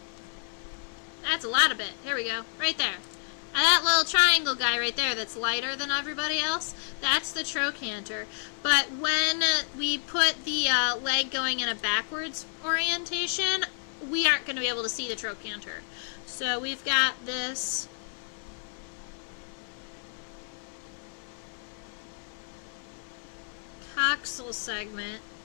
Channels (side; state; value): right; silent; digital silence